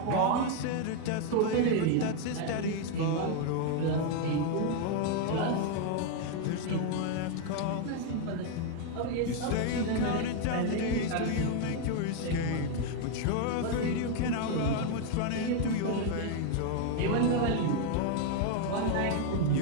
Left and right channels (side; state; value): both; different; correlation 0.01